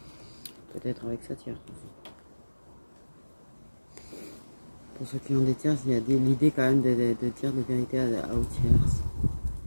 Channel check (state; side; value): inverted; both; correlation -1.00